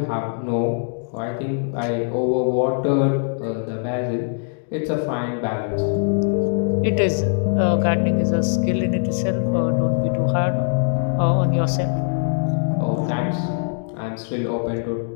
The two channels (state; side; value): silent; right; digital silence